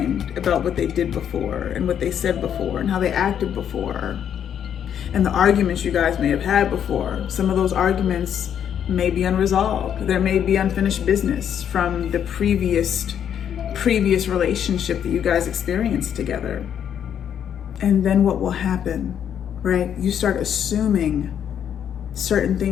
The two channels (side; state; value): right; quieter; 9.0 dB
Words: about what they did before and what they said before and how they acted before and the arguments you guys may have had before. Some of those arguments may be unresolved. There may be unfinished business from the previous relationship that you guys experienced together. And then what will happen, right? You start assuming certain